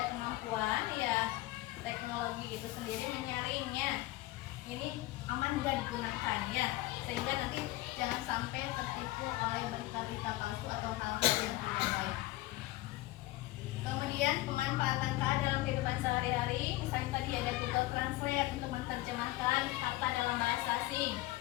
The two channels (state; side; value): quieter; right; 18.2 dB